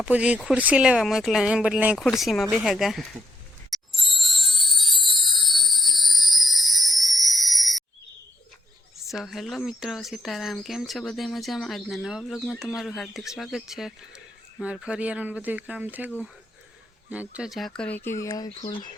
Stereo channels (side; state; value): both; normal; correlation 0.76